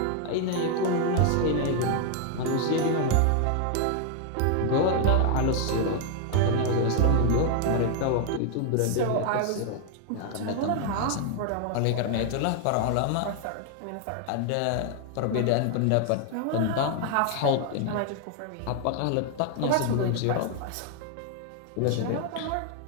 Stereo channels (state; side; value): different; both; correlation 0.00